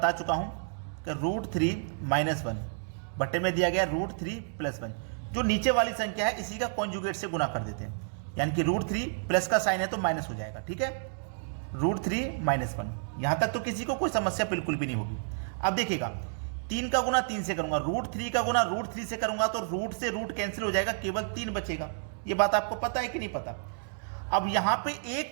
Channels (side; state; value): left; silent; digital silence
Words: चुका हूं कि √3 - 1 बटे में दिया गया √3 + 1, जो नीचे वाली संख्या है इसी का कॉन्जुगेट से गुना कर देते हैं, यानी कि √3 प्लस का साइन है तो माइनस हो जाएगा। ठीक है, √3 - 1, यहां तक तो किसी को कोई समस्या बिल्कुल भी नहीं होगी। अब देखिएगा, 3 का गुना 3 से करूंगा, √3 का गुना √3 से करूंगा तो रूट से रूट कैंसिल हो जाएगा, केवल 3 बचेगा। ये बात आपको पता है कि नहीं पता? अब यहां पे